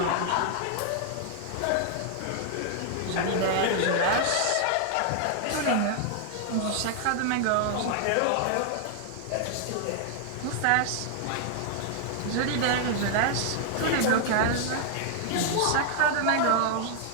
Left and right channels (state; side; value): different; both; correlation 0.00